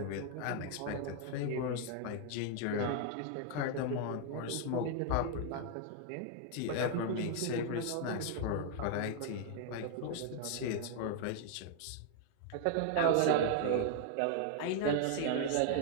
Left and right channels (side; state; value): both; different; correlation 0.00